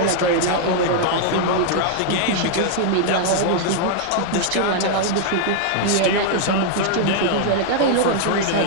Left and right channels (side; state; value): both; different; correlation -0.01